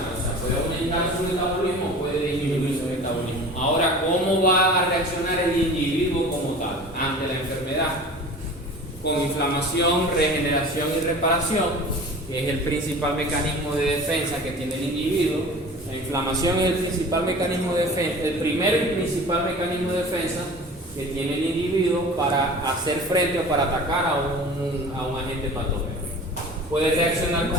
O sea, puede aumentar su metabolismo o puede disminuir su metabolismo. Ahora, ¿cómo va a reaccionar el individuo como tal ante la enfermedad? Con inflamación, regeneración y reparación, que es el principal mecanismo de defensa que tiene el individuo. La inflamación es el principal mecanismo de defensa, el primer y principal mecanismo de defensa que tiene el individuo para hacer frente o para atacar a un agente patógeno. puede reaccionar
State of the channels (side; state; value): both; normal; correlation 0.40